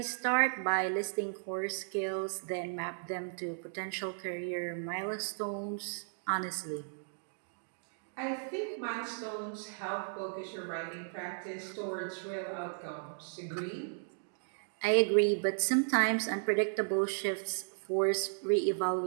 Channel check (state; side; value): silent; left; digital silence